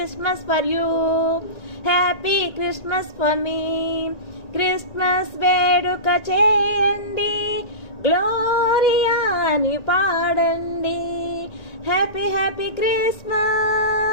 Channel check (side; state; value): right; late; 1.9 ms